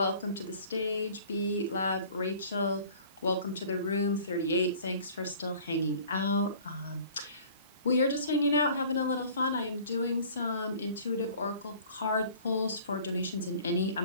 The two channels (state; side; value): inverted; both; correlation -0.49